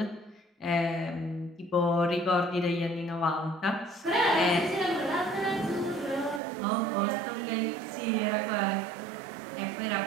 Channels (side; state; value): left; drops out; at 6.4 s